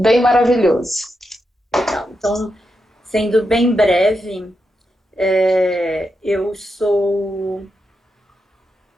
maravilhoso. Legal. Então, sendo bem breve, eu sou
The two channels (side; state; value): both; normal; correlation 0.86